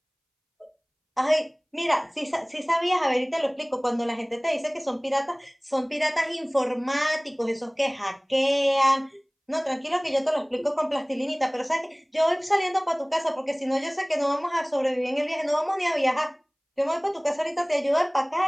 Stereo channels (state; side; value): identical; both; correlation 1.00